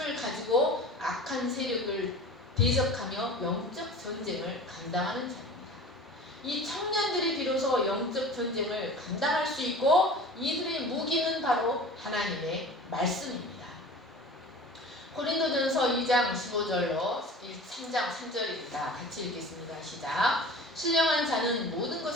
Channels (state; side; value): normal; both; correlation 0.39